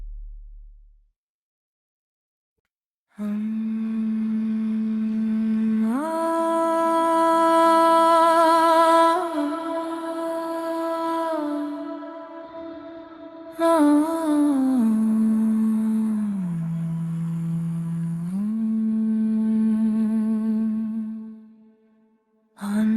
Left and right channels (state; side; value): identical; both; correlation 1.00